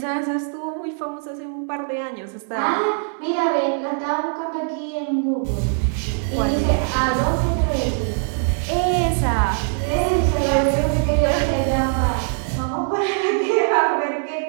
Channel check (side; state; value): left; silent; digital silence